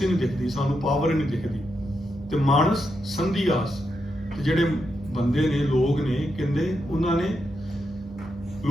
ਹੀ ਨਹੀਂ ਦਿਖਦੀ, ਸਾਨੂੰ ਪਾਵਰ ਹੀ ਨਹੀਂ ਦਿਖਦੀ। ਤੇ ਮਾਨਸ ਸੰਧੀ ਆਸ, ਤੇ ਜਿਹੜੇ ਬੰਦੇ ਨੇ, ਲੋਕ ਨੇ, ਕਹਿੰਦੇ ਉਹਨਾਂ ਨੇ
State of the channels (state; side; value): normal; both; correlation 0.84